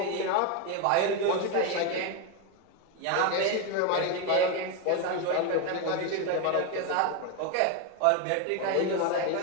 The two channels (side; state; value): both; different; correlation 0.02